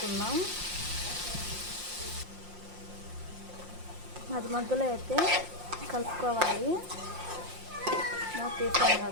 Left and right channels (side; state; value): left; late; 5.7 ms